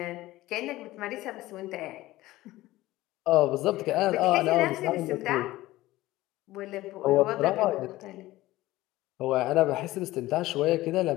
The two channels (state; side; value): quieter; right; 17.3 dB